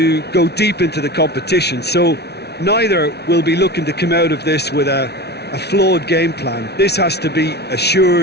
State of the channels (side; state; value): right; late; 0.49 ms